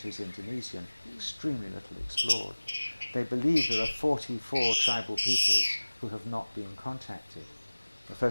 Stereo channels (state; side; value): inverted; both; correlation -1.00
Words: is Indonesian, extremely little explored. They believe there are 44 tribal peoples who have not been contacted. The